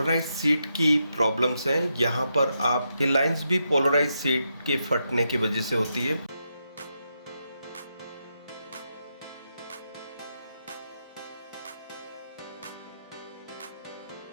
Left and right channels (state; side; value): inverted; both; correlation -0.83